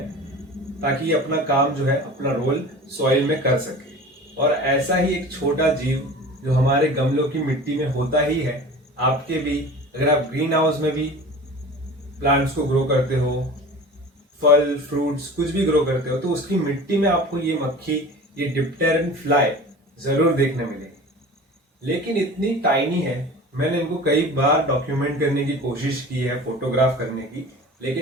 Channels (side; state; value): both; normal; correlation 0.38